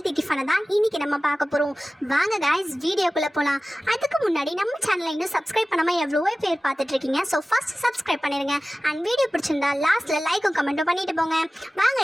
டிஃபனை தான் இன்னைக்கு நம்ம பார்க்க போகிறோம். வாங்க கைஸ் வீடியோக்குள்ளே போகலாம். அதுக்கு முன்னாடி நம்ம சேனலை இன்னும் சப்ஸ்கிரைப் பண்ணாமல் எவ்வளோ பேர் பார்த்துட்ருக்கீங்க. ஸோ ஃபஸ்ட் சப்ஸ்கிரைப் பண்ணிடுங்க. அண்ட் வீடியோ பிடிச்சிருந்தா லாஸ்ட்டில் லைக்கும் கமெண்ட்டும் பண்ணிட்டு போங்க. வாங்க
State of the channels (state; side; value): normal; both; correlation 0.97